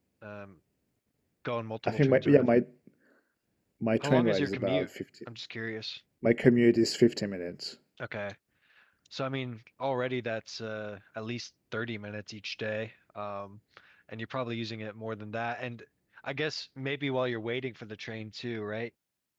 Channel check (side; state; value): both; identical; correlation 1.00